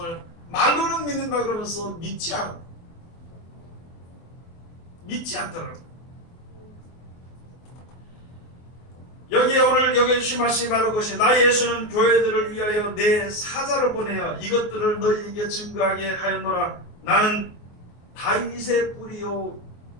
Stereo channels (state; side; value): late; right; 24 ms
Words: 말로는 믿는다 그러면서 믿지 않더라고요. 여기에 오늘 여기 주신 말씀이 바로 그것이, 나 예수는 교회들을 위하여 내 사자를 보내어 이것들을 너희에게 증거하게 하였노라. 나는 다윗의 뿌리요